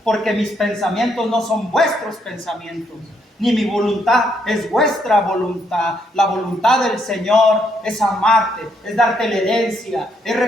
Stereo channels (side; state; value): both; normal; correlation 0.74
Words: porque mis pensamientos no son vuestros pensamientos, ni mi voluntad es vuestra voluntad. La voluntad del Señor es amarte, es darte la herencia, es